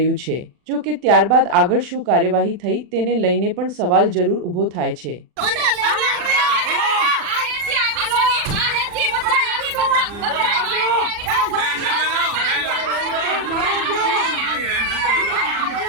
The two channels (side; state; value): left; late; 40 ms